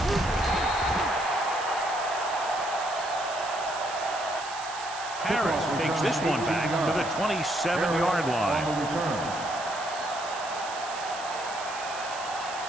Harris takes this one back to the 27-yard line.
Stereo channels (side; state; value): right; noise; hiss, 12 dB below the sound